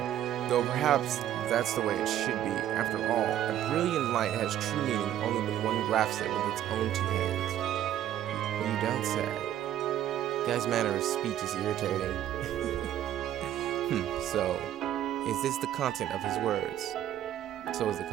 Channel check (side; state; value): left; quieter; 11.6 dB